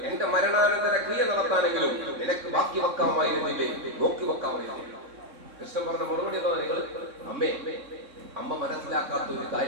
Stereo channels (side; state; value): left; late; 3.7 ms